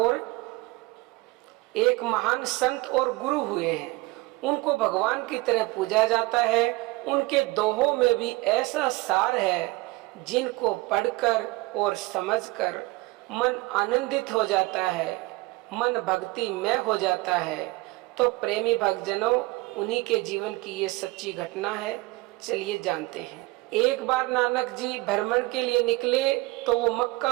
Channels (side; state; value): left; quieter; 21.7 dB